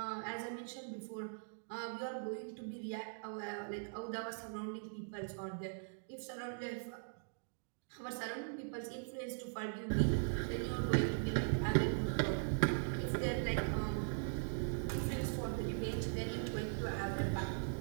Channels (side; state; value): left; silent; digital silence